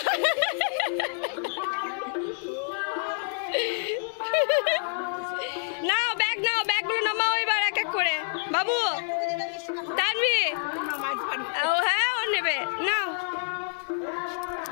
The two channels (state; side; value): silent; right; digital silence